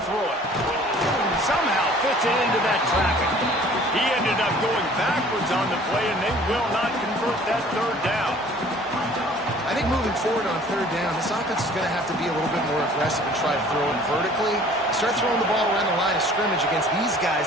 throw it. Somehow fits it into that traffic. He ended up going backwards on the play, and they will not convert that third down. I think moving forward on third down, this offense is going to have to be a little bit more aggressive and try to throw it vertically. Start throwing the ball around the line of scrimmage against these guys.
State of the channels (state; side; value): normal; both; correlation 0.51